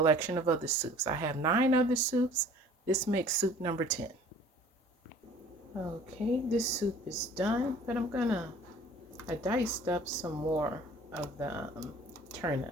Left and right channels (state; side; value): normal; both; correlation 0.50